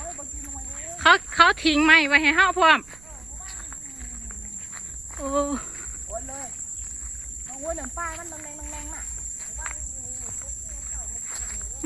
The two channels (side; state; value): right; noise; rumble, 23 dB below the sound